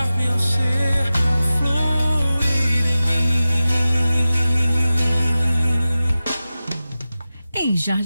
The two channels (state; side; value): inverted; both; correlation -0.95